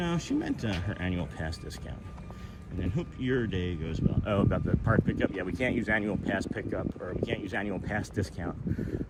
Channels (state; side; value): identical; both; correlation 1.00